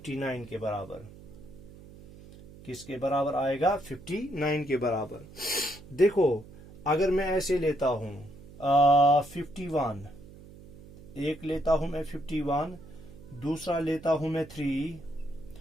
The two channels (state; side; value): noise; right; hum, 19 dB below the sound